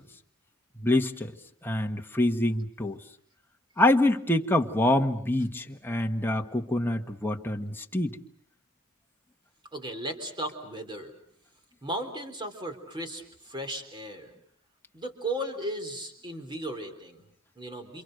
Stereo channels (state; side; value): normal; both; correlation 0.70